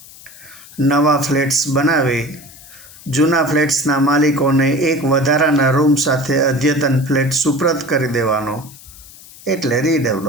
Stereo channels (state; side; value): noise; left; hiss, 20 dB below the sound